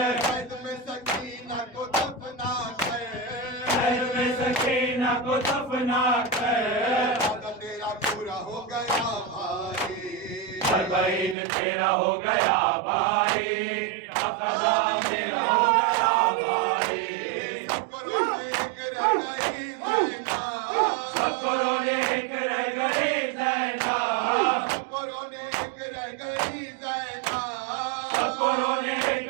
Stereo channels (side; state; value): left; drops out; at 11.4 s